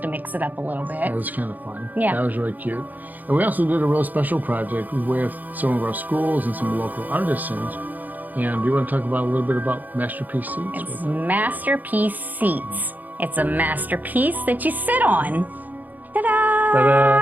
to mix it up a little bit. That was kind of fun. Yeah. That was really cute. And we also did a real special project with some of our schools and some local artisans. And do you want to talk about a little bit about Masterpiece Seats? It's Masterpiece Seats. It's a masterpiece that you sit on. Ta-da!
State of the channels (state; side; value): late; left; 0.083 ms